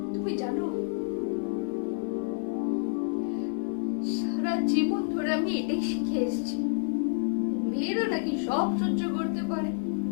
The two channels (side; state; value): right; silent; digital silence